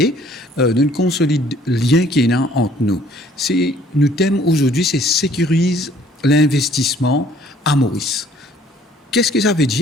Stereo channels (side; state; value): both; normal; correlation 0.58